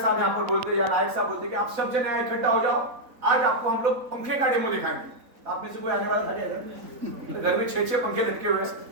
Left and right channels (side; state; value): left; late; 4.0 ms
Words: यहाँ पर बोलते या नायक साहब बोलते कि आप सब जने यहाँ इकट्ठा हो जाओ, आज आपको हम लोग पंखे का डेमो दिखाएंगे, आप में से कोई आने वाला था क्या इधर? घर में 6-6 पंखे लटके हुए